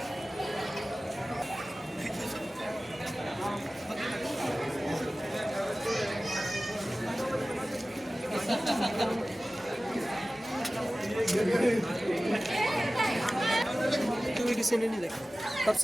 किसी ने नहीं देखा. तब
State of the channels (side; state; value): both; normal; correlation 0.97